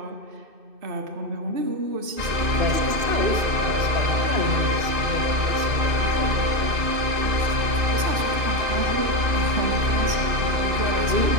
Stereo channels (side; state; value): left; late; 2.6 ms